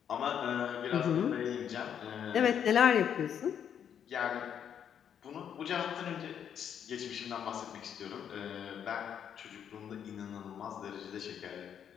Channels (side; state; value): right; quieter; 8.6 dB